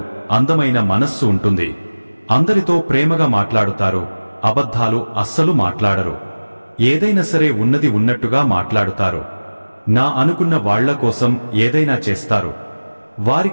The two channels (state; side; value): inverted; both; correlation -1.00